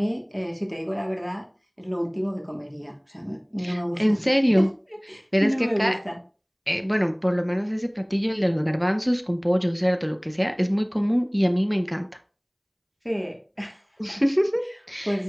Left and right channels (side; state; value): both; identical; correlation 1.00